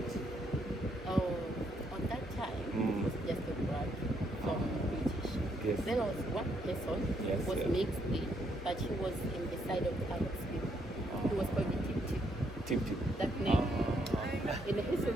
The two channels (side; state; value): both; normal; correlation 0.74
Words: Oh, on that time, it was just a black from British. Yes. There was one person Yes, who was yeah. mixed in, but he was in the side of the Arab people. He was called the Tip Tip. Tip. That name. In the